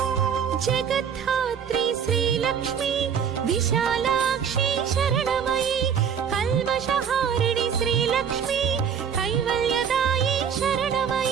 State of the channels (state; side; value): quieter; left; 7.6 dB